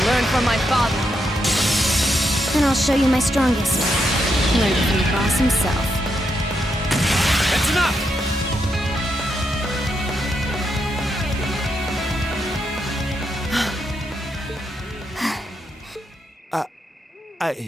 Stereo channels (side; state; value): both; normal; correlation 0.81